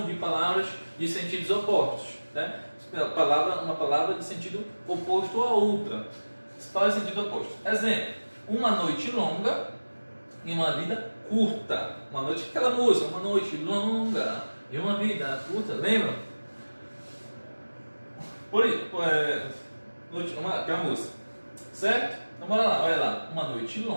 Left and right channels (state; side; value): inverted; both; correlation -1.00